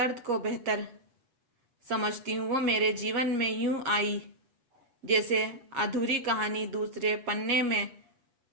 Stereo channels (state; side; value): late; left; 8.3 ms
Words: को बेहतर समझती हूँ। वो मेरे जीवन में यूं आई जैसे अधूरी कहानी। दूसरे पन्ने में